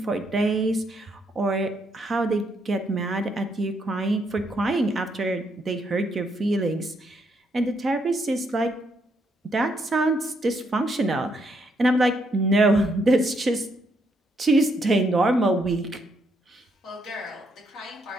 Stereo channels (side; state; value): both; normal; correlation 0.75